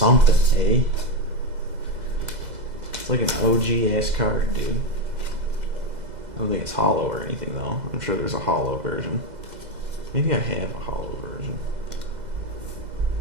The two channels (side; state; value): left; late; 2.0 ms